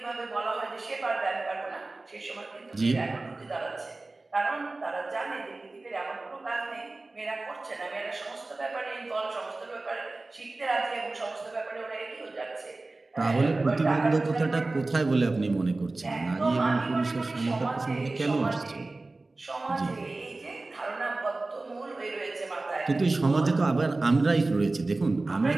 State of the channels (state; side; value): quieter; left; 3.2 dB